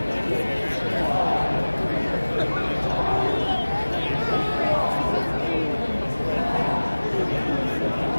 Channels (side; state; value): both; inverted; correlation -1.00